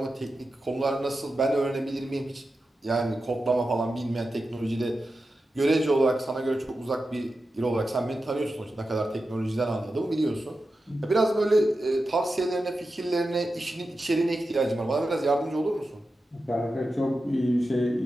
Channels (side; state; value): both; normal; correlation 0.91